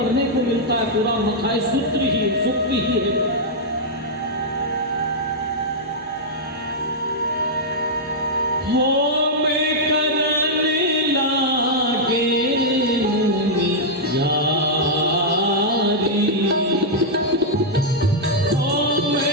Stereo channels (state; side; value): normal; both; correlation -0.06